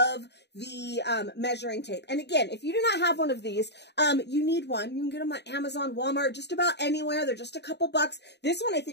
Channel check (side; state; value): right; late; 0.50 ms